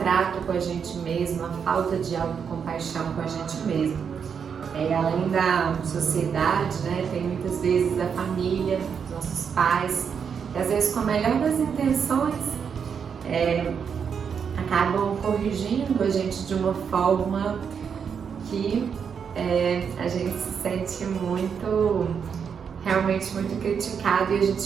com a gente mesmo, a falta de autocompaixão com a gente mesmo. Além da sociedade, tem muitas vezes a família, nossos pais, que às vezes com a melhor das intenções acabam corrigindo a gente de uma forma que a gente se sente realmente muito criticado, e a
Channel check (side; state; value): left; quieter; 6.9 dB